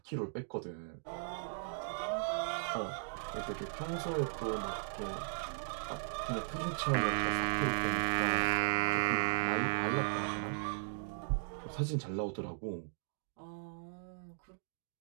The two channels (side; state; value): left; silent; digital silence